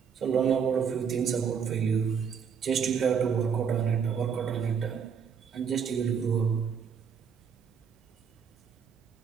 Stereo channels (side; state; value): left; quieter; 6.9 dB